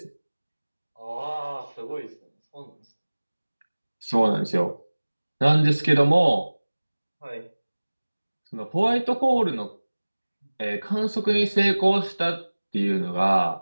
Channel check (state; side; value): inverted; both; correlation -1.00